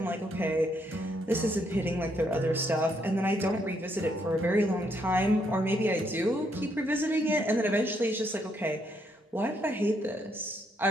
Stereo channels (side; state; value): both; normal; correlation 0.74